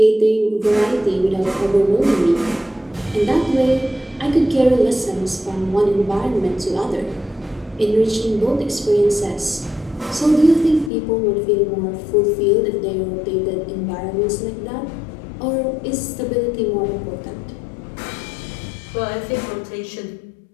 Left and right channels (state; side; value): drops out; right; at 10.9 s